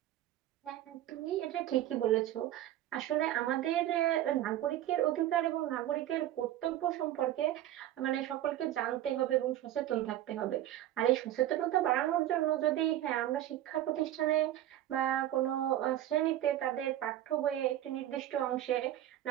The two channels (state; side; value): quieter; left; 13.1 dB